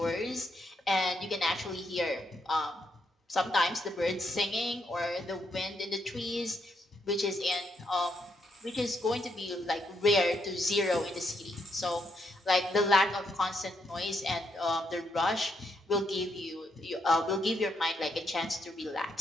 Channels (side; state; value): both; normal; correlation 0.77